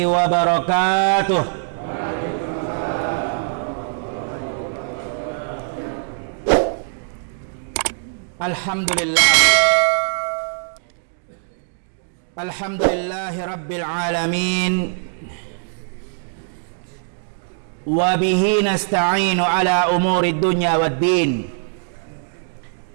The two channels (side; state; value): left; silent; digital silence